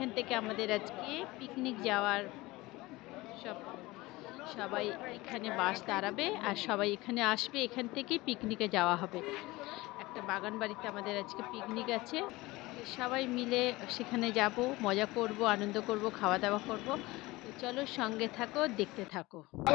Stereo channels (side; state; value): right; quieter; 20.6 dB